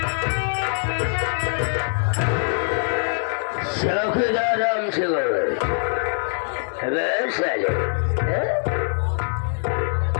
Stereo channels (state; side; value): silent; right; 63 dB below the other